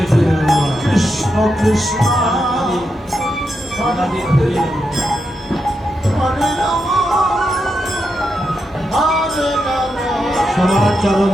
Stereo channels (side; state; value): both; normal; correlation 0.85